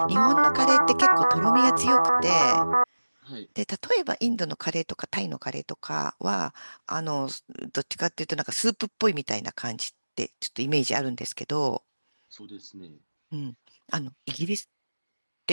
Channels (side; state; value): both; inverted; correlation -1.00